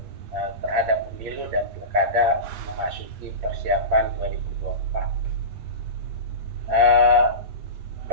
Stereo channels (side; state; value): left; late; 9.0 ms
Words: terhadap pemilu dan pilkada memasuki persiapan 2024.